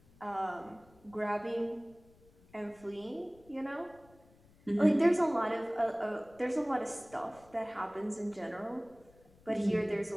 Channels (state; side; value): noise; left; rumble, 27 dB below the sound